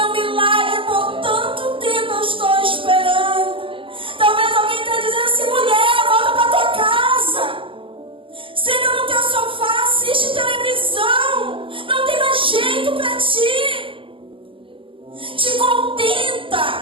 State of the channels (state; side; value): late; left; 0.25 ms